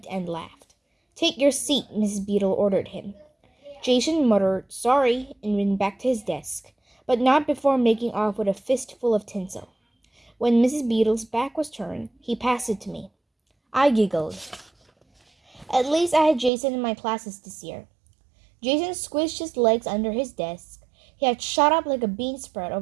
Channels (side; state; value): left; drops out; at 16.5 s